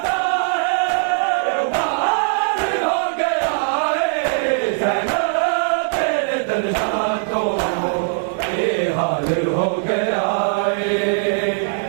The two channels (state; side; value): silent; left; digital silence